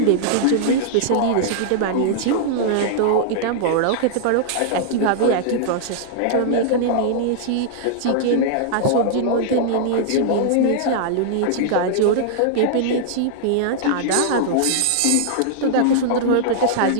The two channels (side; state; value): both; different; correlation -0.01